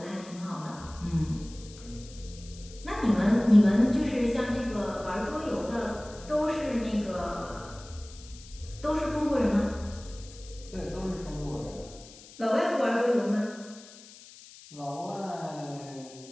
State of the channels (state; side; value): noise; left; hiss, 19 dB below the sound